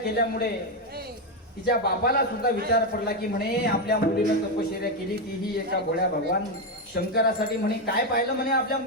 तिच्या बापाला सुद्धा विचार पडला की म्हणे आपल्या मुलीनं तपश्चर्या केली तीही एका भोळ्या भगवान शंकरासाठी. म्हणे काय पाहिलं म्हणे आपल्या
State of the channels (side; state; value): both; normal; correlation 0.07